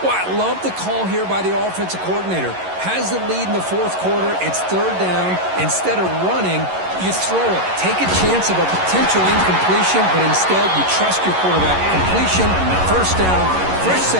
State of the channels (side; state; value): left; late; 11 ms